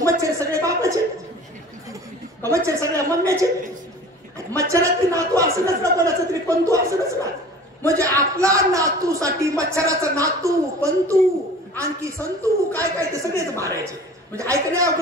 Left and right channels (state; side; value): normal; both; correlation 0.43